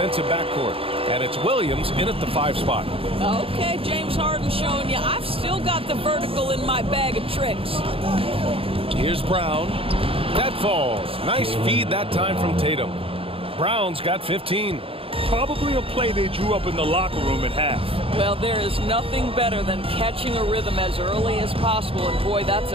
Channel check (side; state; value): left; late; 0.27 ms